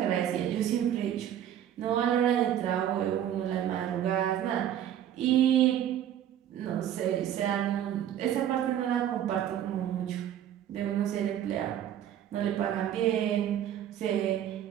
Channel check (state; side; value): quieter; left; 10.6 dB